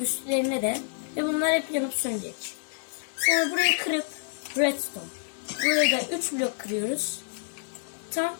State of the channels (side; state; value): right; silent; 59 dB below the other